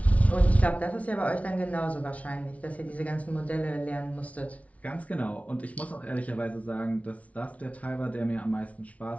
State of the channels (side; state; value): right; late; 0.066 ms